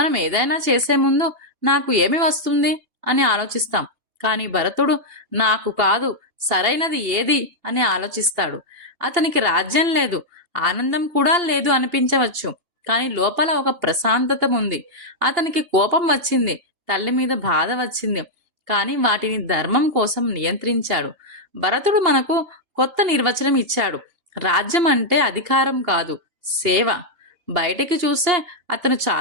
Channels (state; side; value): late; left; 2.8 ms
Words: ఏదైనా చేసే ముందు నాకు ఏమి వస్తుంది అని ఆలోచిస్తాం. కానీ భరతుడు నాకు కాదు, సరైనది ఏది అని ఆలోచిస్తాడు. అతనికి రాజ్యం లేదు, ఆనందం కూడా లేదు అనిపించవచ్చు, కానీ లోపల ఒక ప్రశాంతత ఉంది. అతనికి కోపం వచ్చింది, తల్లి మీద బాధ వచ్చింది, కానీ వాటిని ధర్మం కోసం నియంత్రించాడు. భరతుడు మనకు కొత్త నిర్వచనం ఇచ్చాడు: రాజ్యం అంటే అధికారం కాదు, సేవ. బయటికి చూస్తే అతను